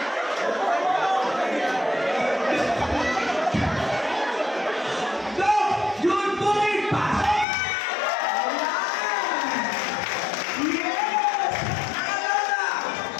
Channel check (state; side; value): drops out; right; at 7.5 s